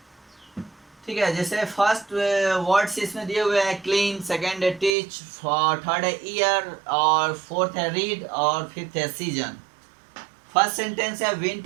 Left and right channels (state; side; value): drops out; left; at 4.9 s